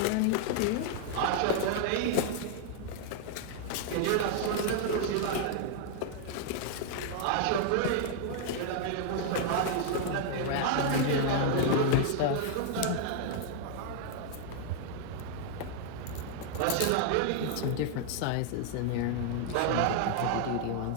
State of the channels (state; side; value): different; both; correlation 0.00